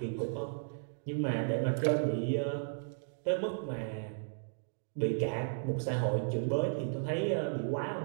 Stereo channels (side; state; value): left; silent; digital silence